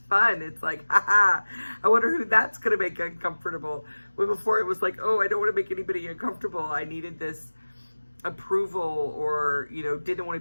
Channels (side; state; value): both; inverted; correlation -1.00